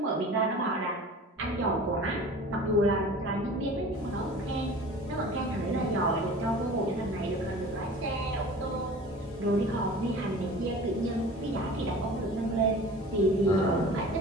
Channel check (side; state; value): both; normal; correlation 0.41